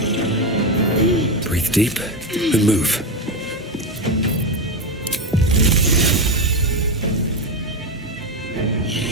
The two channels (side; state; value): both; normal; correlation 0.12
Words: Breathe deep and move.